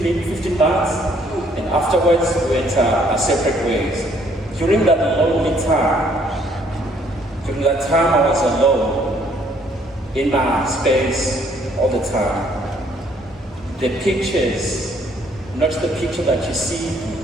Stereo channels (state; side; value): normal; both; correlation 0.64